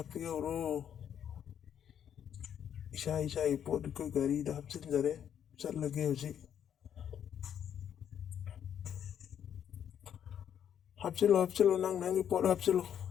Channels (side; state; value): right; quieter; 9.1 dB